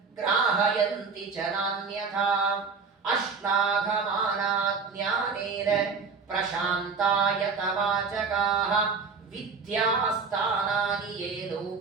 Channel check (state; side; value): quieter; left; 5.0 dB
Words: ಗ್ರಾಹಯಂತಿ ಚ ನಾನ್ಯಥಾ ಅಶ್ಲಾಘಮಾನಾ ಜ್ಞಾನೇನ ಪ್ರಶಾಂತಾಯತ ವಾಚಕಾಃ ವಿದ್ಯಾಸ್ಥಾನಾನಿ ಯೇ